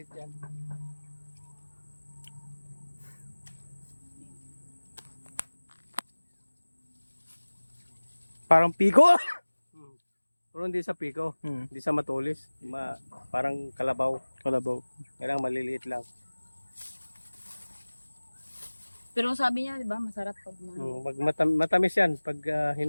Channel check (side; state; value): both; inverted; correlation -1.00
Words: yan. Parang piko. Pero hindi sa piko, Hmm. hindi sa matulis. Parang kalabaw. Kalabaw. Kailangan maliliit lang. Pero sabi niya, di ba, masarap pag, Matamis yan pag